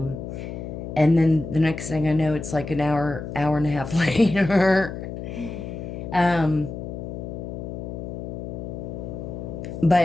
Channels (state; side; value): noise; left; hum, 8 dB below the sound